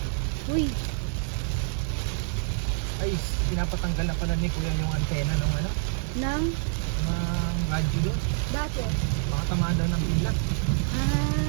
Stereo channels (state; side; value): silent; left; 60 dB below the other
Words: Uy, Ay, pinapatanggal na pala ni Kuya yung antena ng ano? nang Ng radyo doon. bakit? Baka tamaan daw ng pila.